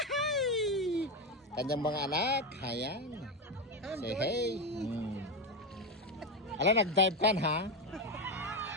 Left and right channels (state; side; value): normal; both; correlation 0.12